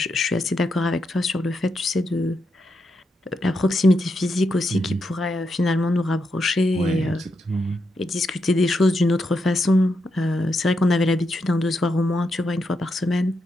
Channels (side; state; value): both; normal; correlation 0.83